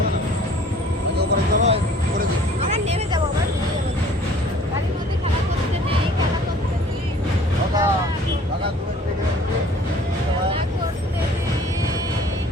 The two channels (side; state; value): both; normal; correlation 0.52